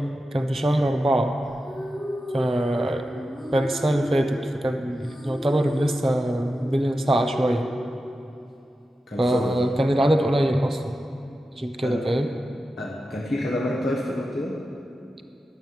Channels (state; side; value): normal; both; correlation 0.91